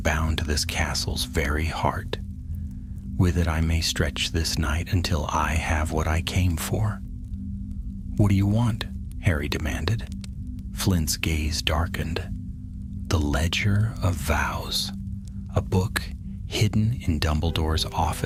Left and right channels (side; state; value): both; identical; correlation 1.00